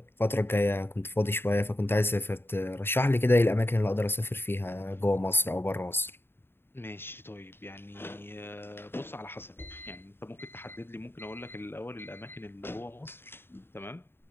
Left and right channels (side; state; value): right; late; 0.11 ms